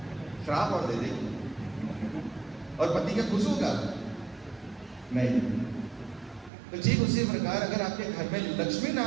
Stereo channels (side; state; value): left; drops out; at 6.5 s